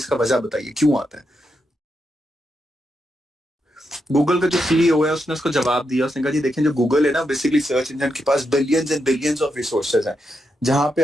वजह बताइए क्यों आता है। गूगल का जो सीईओ है उसने उसको जवाब दिया, उसने कहा जी देखें जो गूगल है ना, बेसिकली सर्च इंजन के पास billions and billions of resources हैं। जहां पे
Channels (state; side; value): normal; both; correlation 0.84